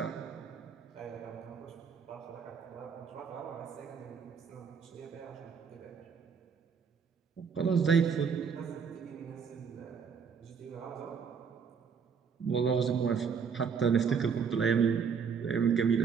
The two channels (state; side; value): quieter; left; 6.3 dB